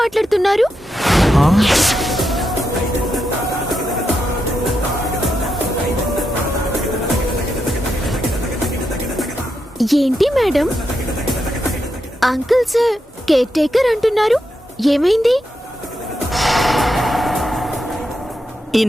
ఏంటి madam, uncle sir care taker అంటున్నారు, ఏమైంది?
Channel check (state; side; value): normal; both; correlation 0.84